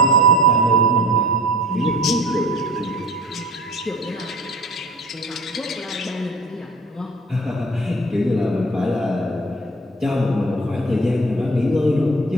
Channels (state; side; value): normal; both; correlation 0.41